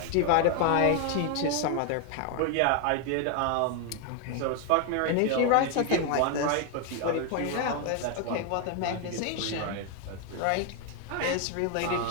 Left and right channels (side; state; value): both; different; correlation 0.01